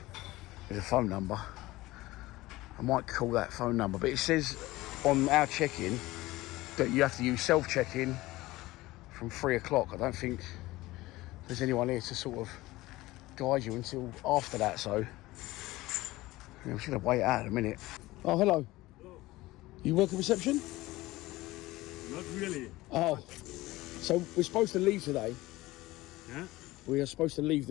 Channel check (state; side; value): quieter; right; 18.7 dB